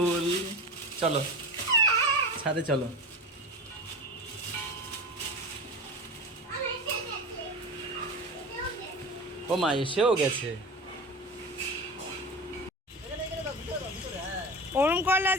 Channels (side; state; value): both; normal; correlation 0.28